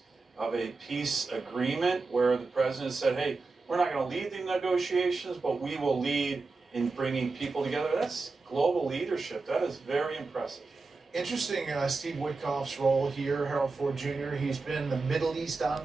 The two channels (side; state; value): left; quieter; 3.9 dB